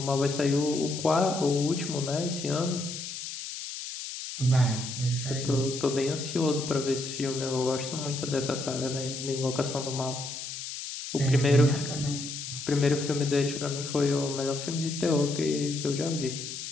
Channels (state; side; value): noise; left; hiss, 8 dB below the sound